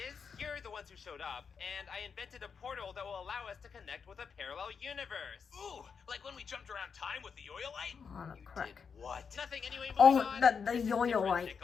you're the ones who showed up, and I invented a portal that will allow us to connect with a parallel universe. Ooh, like when we jumped around time with the yo-yo light? Oh, no, crack. What? Nothing anyway. Oh, On. the This is yo-yo different, light.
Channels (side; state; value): right; quieter; 6.1 dB